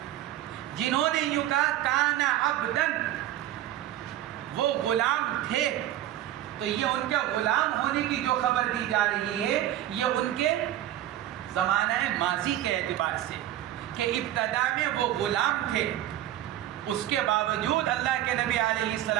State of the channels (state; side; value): quieter; left; 12.9 dB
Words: جنہوں نے یوں کہا کانا عبدن، وہ غلام تھے، تو یہ ان کے غلام ہونے کی جو خبر دی جا رہی ہے یہ ان کے زمانہ ماضی کے اعتبار سے کہ ابتدا میں وہ غلام تھے، اس کے باوجود اللہ کے نبی علیہ